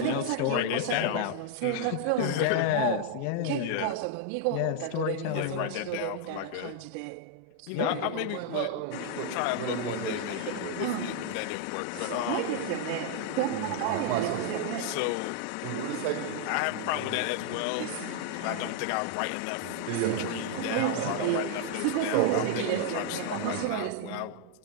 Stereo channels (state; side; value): different; both; correlation 0.00